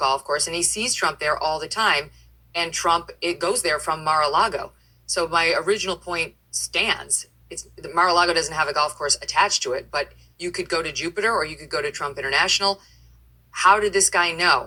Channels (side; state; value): both; identical; correlation 1.00